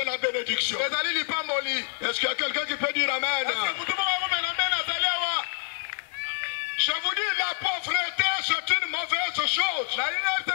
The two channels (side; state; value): right; silent; 60 dB below the other